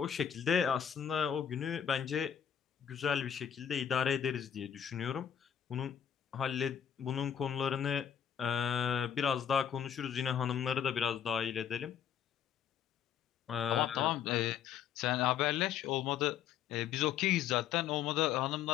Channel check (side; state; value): right; quieter; 8.8 dB